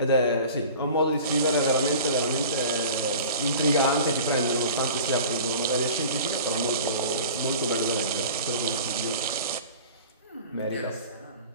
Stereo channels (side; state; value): both; inverted; correlation -0.41